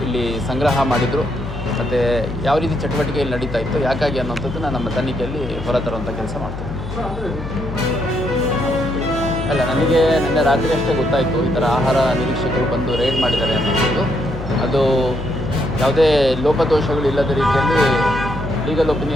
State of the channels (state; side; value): noise; left; hum, 9 dB below the sound